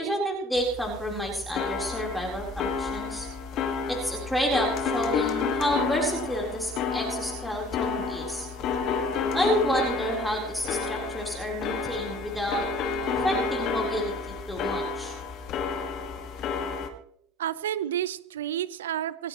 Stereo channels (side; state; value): both; normal; correlation 0.48